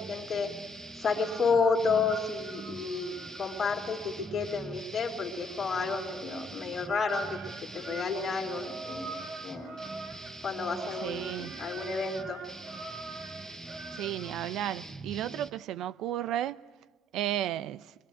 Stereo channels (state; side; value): normal; both; correlation 0.66